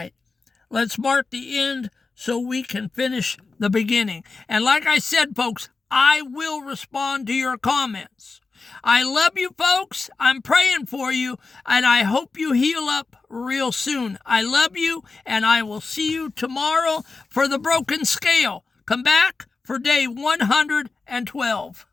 Let's mark the end so we can finish the beginning. And like I said, folks, I will respond to your comments. I love you, folks. I'm praying for you, and I hope you heal up real soon. I love you, and I will see you tomorrow for the broken scale. Come back for day 112.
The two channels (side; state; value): right; quieter; 4.1 dB